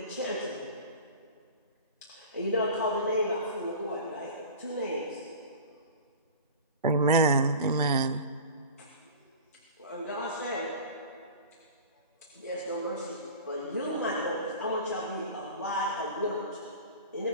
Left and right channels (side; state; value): both; inverted; correlation -0.37